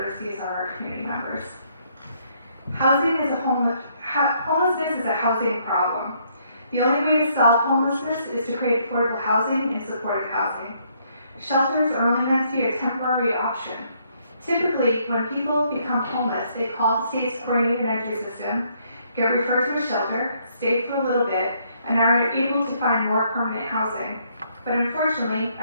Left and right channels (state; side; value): inverted; both; correlation -0.69